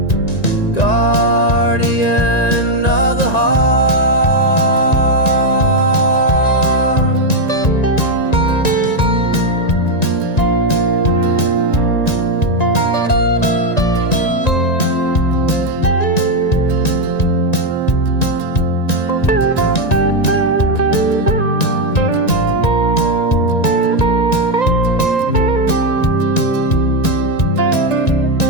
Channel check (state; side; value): late; right; 1.9 ms